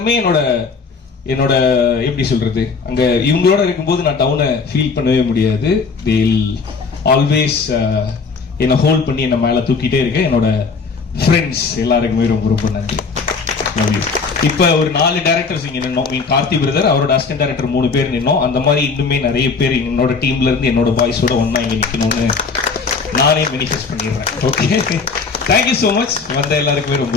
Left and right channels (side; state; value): right; quieter; 4.8 dB